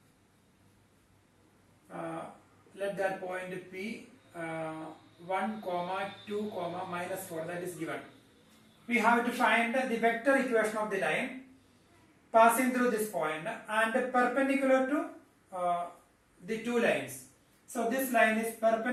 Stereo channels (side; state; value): both; identical; correlation 1.00